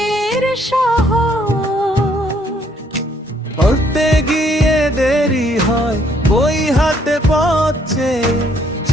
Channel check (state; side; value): normal; both; correlation 0.67